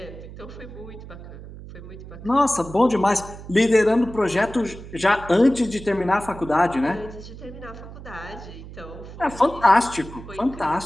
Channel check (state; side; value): noise; right; hum, 14 dB below the sound